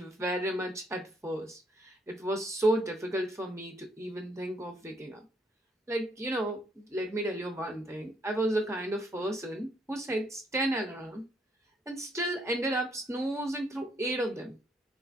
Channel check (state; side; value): normal; both; correlation 0.71